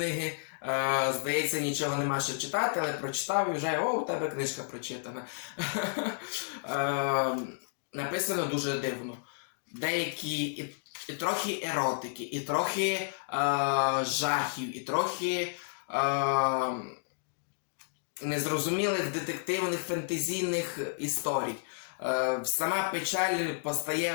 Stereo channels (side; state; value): right; silent; digital silence